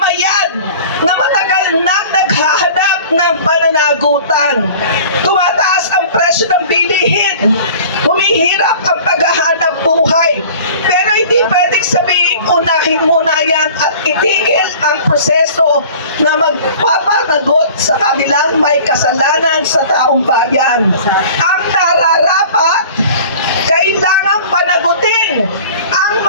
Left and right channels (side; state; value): both; inverted; correlation -0.44